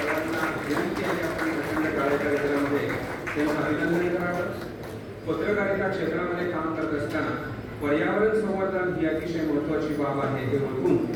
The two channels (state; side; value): identical; both; correlation 1.00